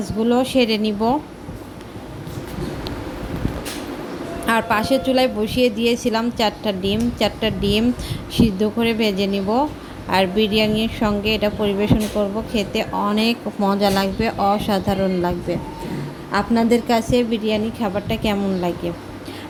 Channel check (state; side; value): identical; both; correlation 1.00